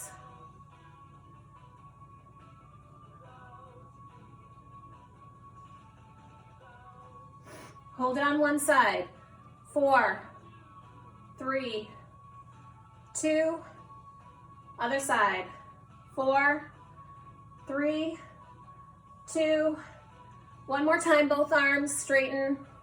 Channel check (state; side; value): identical; both; correlation 1.00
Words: Hold it on one side. 4, 3, 2, other side. 4, 3, 2, one more time, both arms straighten.